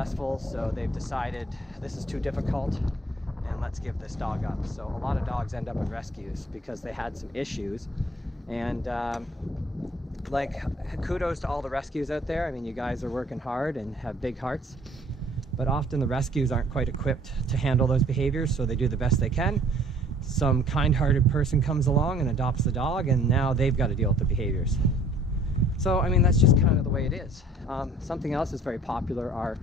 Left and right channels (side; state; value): both; normal; correlation 0.55